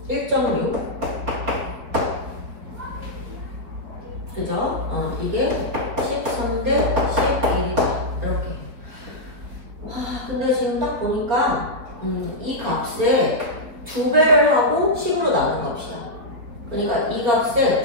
1.6 그죠? 이게 13대 11이다 이렇게. 근데 지금 딱 보니까 이 값에 2배를 하고 10으로 나눈 값이야. 그러니까 이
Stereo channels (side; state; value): left; late; 4.4 ms